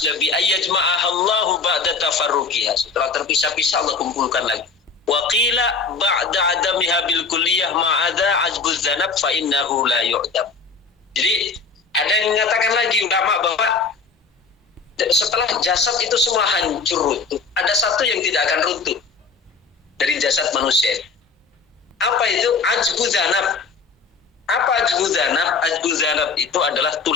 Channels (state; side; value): quieter; right; 4.7 dB